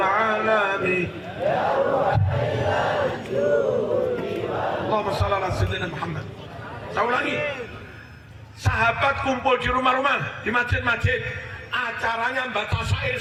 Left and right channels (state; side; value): identical; both; correlation 1.00